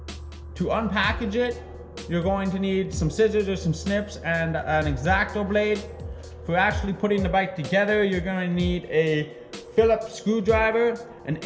to unpackage it. You're going to need some scissors or some snips and an X-Acto blade. For actually putting the bike together, you're going to need a Phillips screwdriver, an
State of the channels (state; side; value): identical; both; correlation 1.00